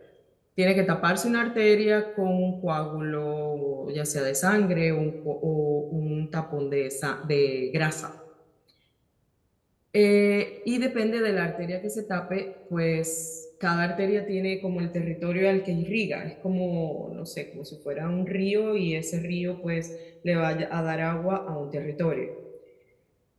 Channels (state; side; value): identical; both; correlation 1.00